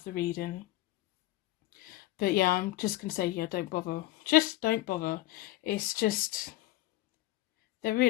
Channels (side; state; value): right; quieter; 16.7 dB